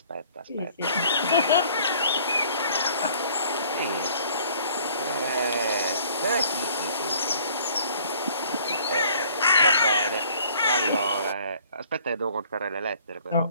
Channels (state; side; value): inverted; both; correlation -0.56